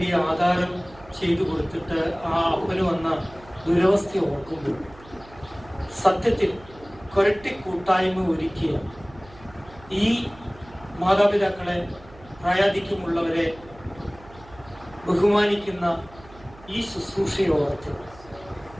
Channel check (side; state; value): right; noise; hum, 22 dB below the sound